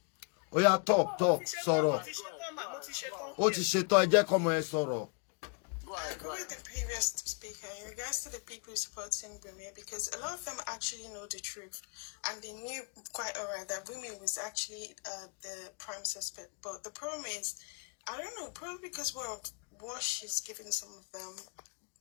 Ó yá talk sọ̀rọ̀. Ó ti ṣetán ẹ jẹ́ kọ́mọ ẹ sọ̀rọ̀. I agree with the previous speaker in regards to the people supporting Bumi because a lot of them actually know the truth and they knew quite alright that Bumi was actually the prime suspect. But the problem is, I don't know, probably because of what she's giving some of them,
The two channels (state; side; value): quieter; right; 35.8 dB